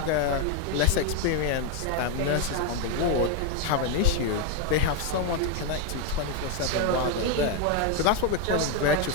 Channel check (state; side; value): different; both; correlation 0.01